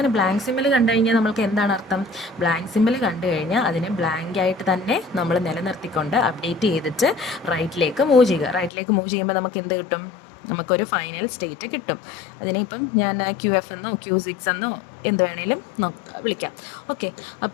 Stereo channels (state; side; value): drops out; right; at 8.7 s